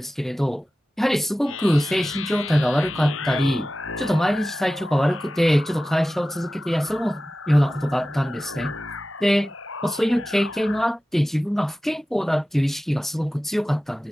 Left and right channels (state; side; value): normal; both; correlation 0.95